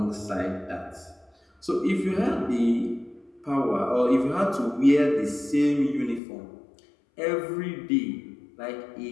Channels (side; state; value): right; drops out; at 6.2 s